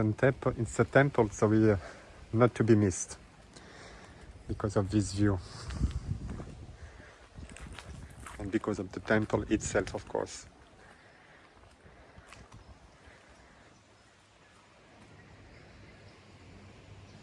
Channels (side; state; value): both; identical; correlation 1.00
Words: temple, so not to be missed because of this view and because of the temple itself, of course.